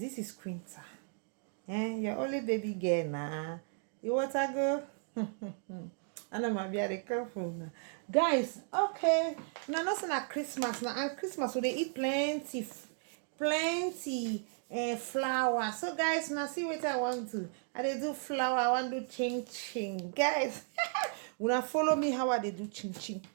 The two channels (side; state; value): left; silent; 55 dB below the other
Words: is Quinta. Your only baby girl now. You want to go? I know my be careful now. Guys, okay. Now nothing at Christmas now. And Christmas so they eat plenty flour. So guys, now see what I want to. I they do flour, I want to do ching ching. Guys, when I follow me how I they do ching ching.